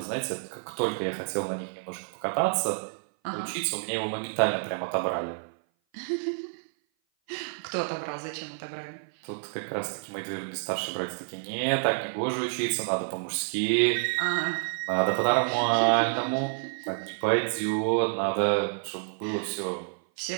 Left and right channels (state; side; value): silent; left; 56 dB below the other